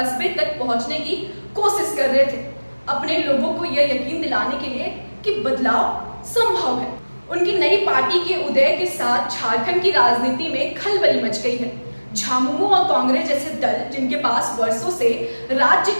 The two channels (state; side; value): inverted; both; correlation -1.00